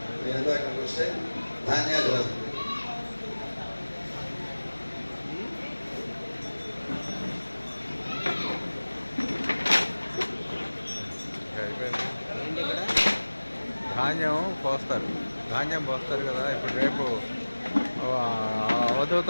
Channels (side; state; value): both; inverted; correlation -1.00